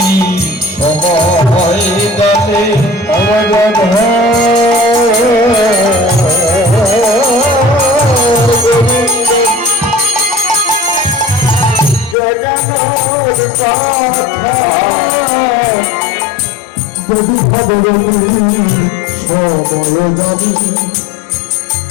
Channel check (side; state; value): right; drops out; at 12.2 s